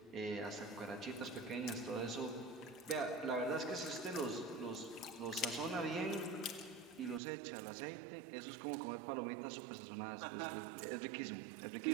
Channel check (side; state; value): left; drops out; at 7.2 s